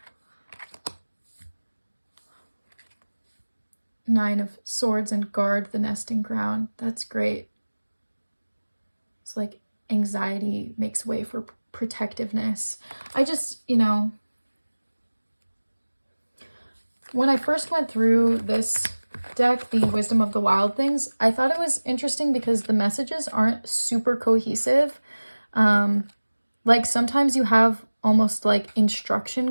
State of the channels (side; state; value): both; inverted; correlation -1.00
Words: Nine of Swords and Guard the Nesting Ground. That's great. It's like anxiety makes way for protectiveness. I just, you know, when I first went through this deck, the Wisdom of the Wild Things, I thought it was interesting because the messages aren't super cohesive. Like sometimes you have almost like